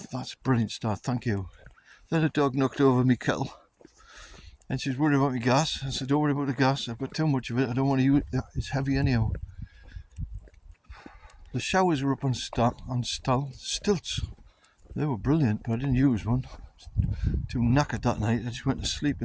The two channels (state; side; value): identical; both; correlation 1.00